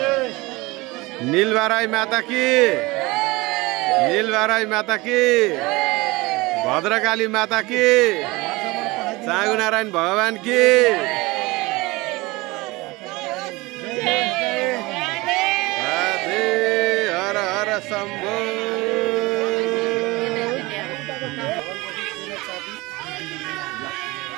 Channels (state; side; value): quieter; left; 22.4 dB